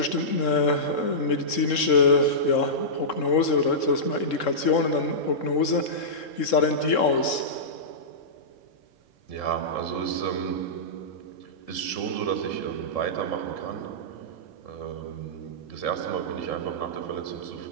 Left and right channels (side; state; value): right; late; 3.7 ms